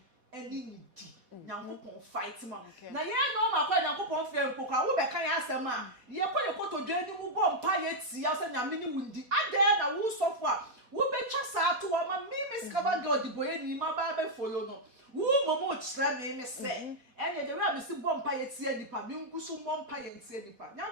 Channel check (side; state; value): left; late; 4.1 ms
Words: any di. Nyankopon fight ma. Na ye no ma kwa nyankopon fe mpokwa wo be kan ya asema. Ye kwa ye kotodwe ni mu go mpa ye ti ya se nyame ni wundi. Ade na wo sofo a wo be twa sa to wa ma me skaba God boye ni ma ba be follow no. Wo momo kira me se. Ene de we me si bo mpa ye ti adipa. Me nkusu bo mpa ye ti adipa.